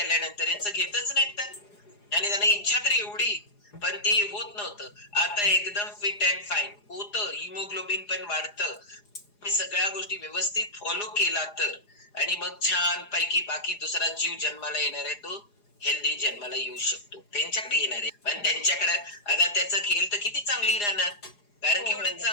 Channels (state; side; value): late; right; 4.8 ms